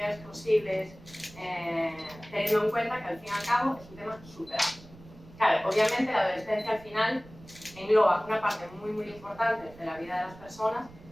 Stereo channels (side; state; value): right; noise; rumble, 20 dB below the sound